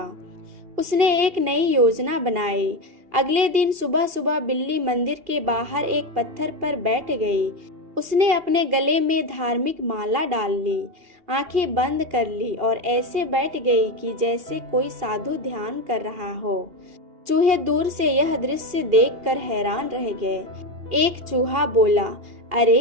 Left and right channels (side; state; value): left; late; 2.7 ms